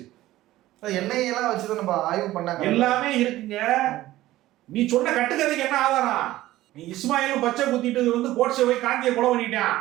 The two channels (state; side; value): quieter; left; 15.8 dB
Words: எண்ணெயெல்லாம் வச்சுதான் நம்ம ஆய்வு பண்ணாங்க, எல்லாமே இருக்குங்க. நீ சொன்ன கட்டுக்கதைக்கு என்ன ஆதாரம்? நீ இஸ்மாயிலும் பச்சை குத்திட்டு வந்து கோட்ஸை போய் காந்தியை கொலை பண்ணிட்டான்.